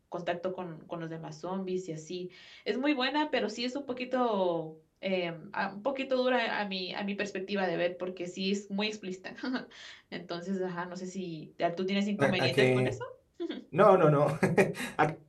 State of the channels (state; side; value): identical; both; correlation 1.00